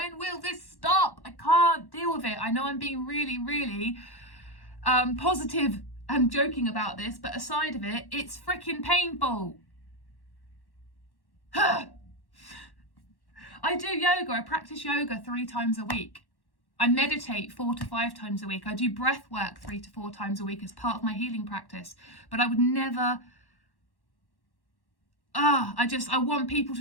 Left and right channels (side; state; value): right; late; 1.1 ms